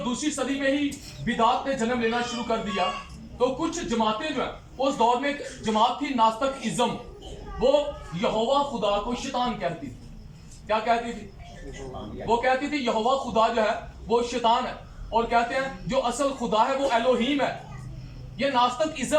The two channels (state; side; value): identical; both; correlation 1.00